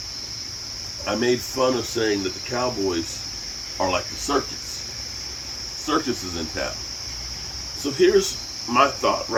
I made fun of saying that the Cowboys are like the circus. Circus is in town. So here's my thought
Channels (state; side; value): identical; both; correlation 1.00